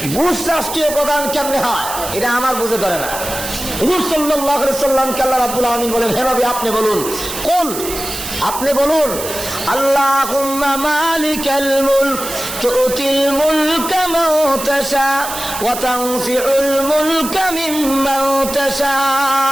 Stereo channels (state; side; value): noise; right; hiss, 8 dB below the sound